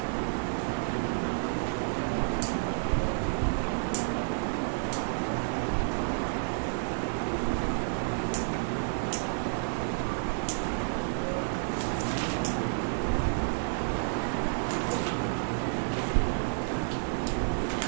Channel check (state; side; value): silent; left; digital silence